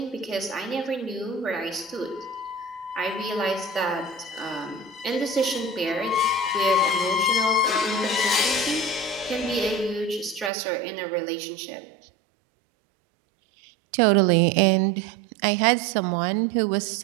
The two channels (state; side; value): drops out; left; at 10.5 s